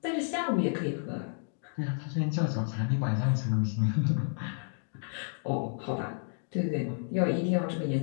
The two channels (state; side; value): silent; right; digital silence